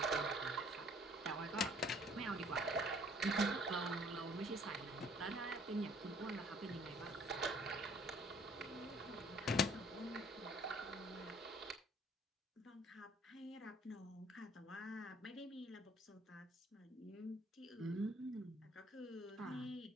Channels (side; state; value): both; normal; correlation 0.58